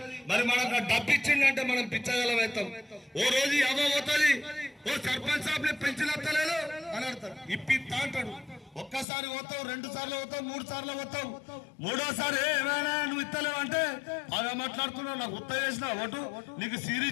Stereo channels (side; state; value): right; drops out; at 9.1 s